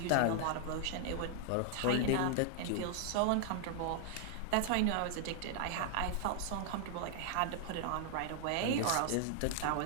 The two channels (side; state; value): both; different; correlation 0.00